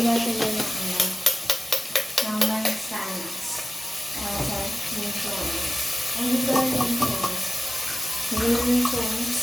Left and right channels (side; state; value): both; normal; correlation 0.96